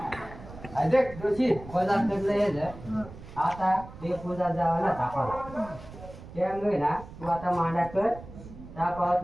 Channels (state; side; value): noise; right; rumble, 15 dB below the sound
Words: देख दोषी बाजार करलं आता ते पूजा जावं ना तापाला त्यामुळे ना तू आता मांडा कर तापावत